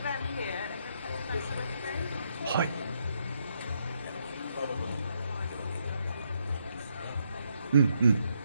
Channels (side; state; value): both; inverted; correlation -0.76